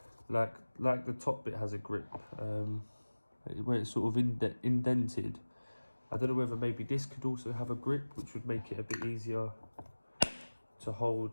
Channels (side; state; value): both; inverted; correlation -1.00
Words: Like the top bit has a grip, where it's sort of indented. I don't know whether maybe this could also have a grip, which would make it a bit easier to